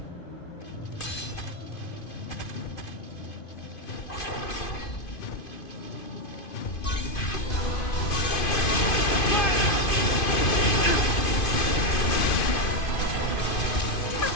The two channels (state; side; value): late; right; 2.5 ms